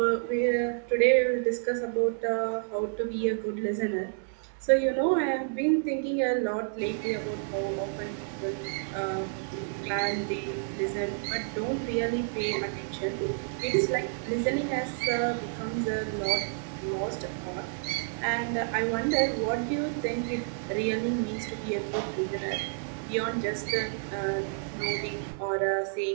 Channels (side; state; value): left; silent; digital silence